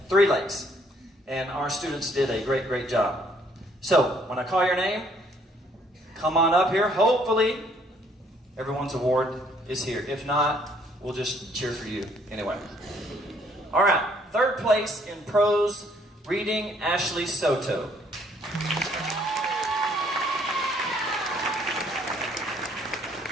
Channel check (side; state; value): both; normal; correlation 0.64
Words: Three Lakes. And our students did a great job. So when I call your name, come on up here. Hopefully everyone's award is here. If not, we'll just cheer for you anyway. All right. 3rd place in prose reading, Ashley Soto.